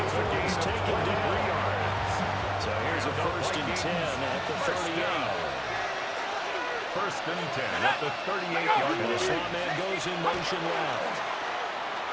He's taken down 3 yards. So here's a 1st and 10 at the 38. 1st and 10 at the 38-yard And the line. slot man goes in motion left.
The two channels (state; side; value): identical; both; correlation 1.00